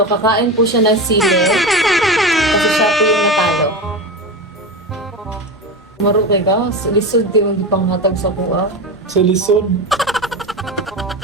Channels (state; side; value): normal; both; correlation 0.22